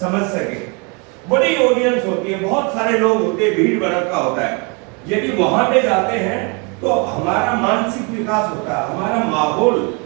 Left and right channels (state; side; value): quieter; left; 32.5 dB